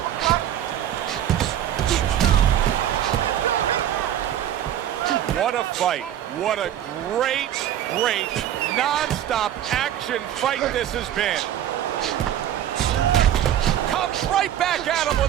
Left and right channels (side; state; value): left; quieter; 11.0 dB